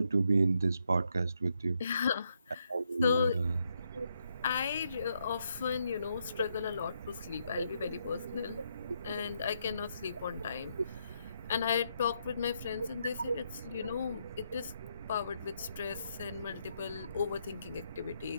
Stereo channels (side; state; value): both; inverted; correlation -0.78